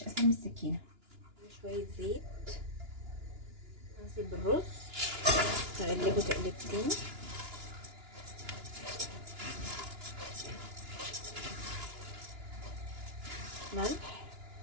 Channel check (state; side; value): late; left; 2.9 ms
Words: اسهل من السكينه. شويه زيت، انزل بالرز، اقلبه تقلبتين. ملح،